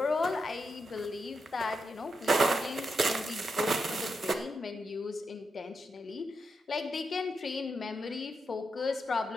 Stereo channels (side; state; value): both; normal; correlation 0.85